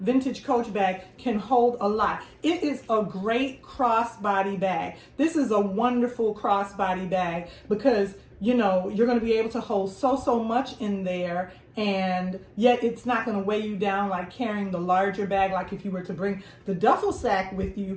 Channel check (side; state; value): both; identical; correlation 1.00